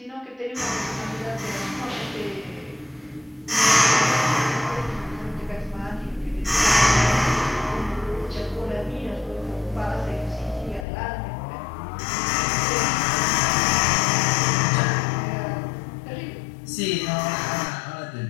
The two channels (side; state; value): right; drops out; at 10.9 s